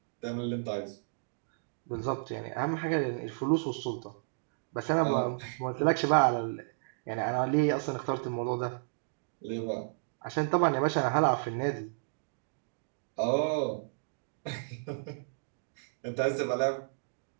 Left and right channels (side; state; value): left; silent; digital silence